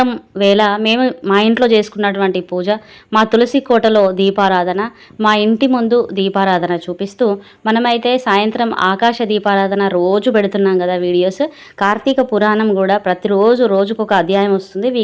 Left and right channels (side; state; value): both; identical; correlation 1.00